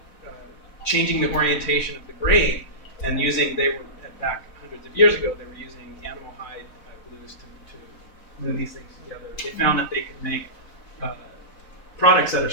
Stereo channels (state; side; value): late; right; 4.0 ms